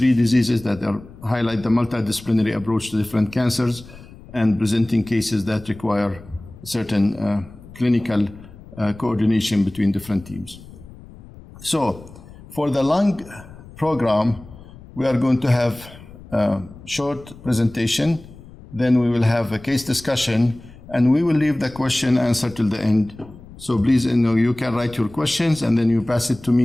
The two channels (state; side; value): noise; left; rumble, 19 dB below the sound